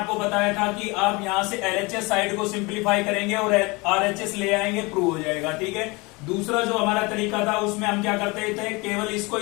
बताया था कि आप यहां से एलएचएस साइड को सिंप्लीफाई करेंगे और आरएचएस ले आएंगे, प्रूव हो जाएगा। ठीक है, दूसरा जो हमारा तरीका था उसमें हम क्या करते थे, केवल इसको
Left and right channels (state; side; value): quieter; right; 26.0 dB